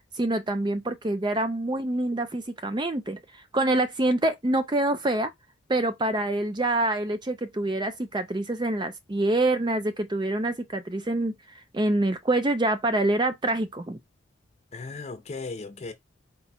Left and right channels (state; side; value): normal; both; correlation 0.53